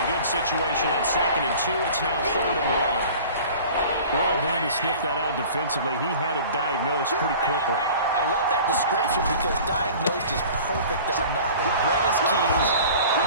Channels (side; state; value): both; inverted; correlation -0.43